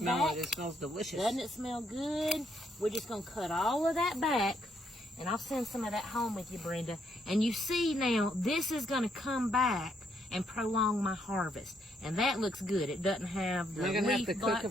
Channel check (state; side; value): normal; both; correlation 0.74